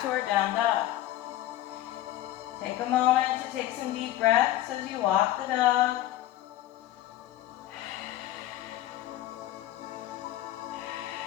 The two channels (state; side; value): quieter; right; 13.9 dB